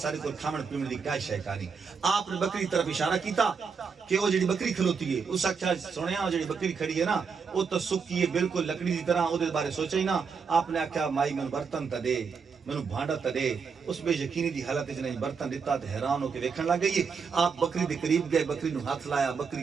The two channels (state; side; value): quieter; left; 5.7 dB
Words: को खावन पीवन की क्या शय कहानी आपने बकरी तरफ इशारा किया कि वो जी बकरी खलोती है उस आख्या सुनिया वो जी बकरी खड़ी है ना वो तो सुक्की है बिल्कुल लकड़ी की तरह वो बारे सोचा ही ना आपने आख्या माई मैं बर्तन त दे मैनू भांडा त दे उस बेयकीनी की हालत नहीं बर्तन दिता तो हैरान होकर वेखण लग गई आप बकरी के करीब गए बकरी नु हाथ लाया